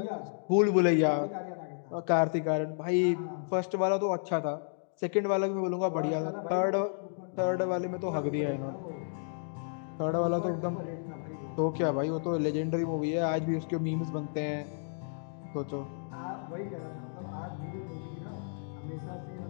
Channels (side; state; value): right; silent; digital silence